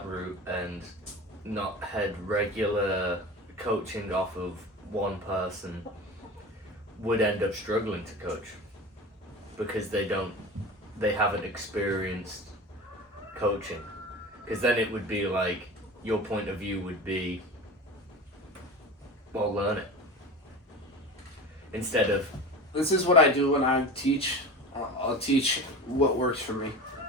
route and not had regular coaching off of one person would end up struggling to coach because they haven't experienced coaching? Because then it would be like your point of view would be, well, learn it. Instead of... This is what I do when I teach. I'll teach what works for me.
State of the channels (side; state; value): both; normal; correlation 0.32